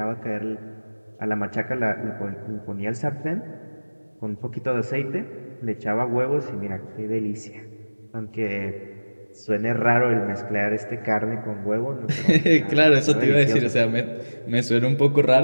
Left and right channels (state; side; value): inverted; both; correlation -1.00